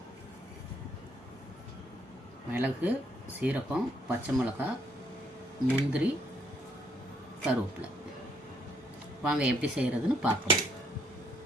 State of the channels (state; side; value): normal; both; correlation 0.69